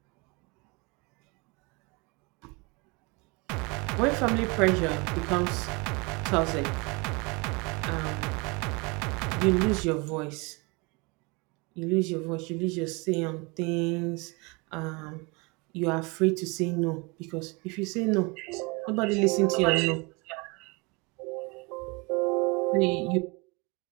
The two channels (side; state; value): left; quieter; 28.3 dB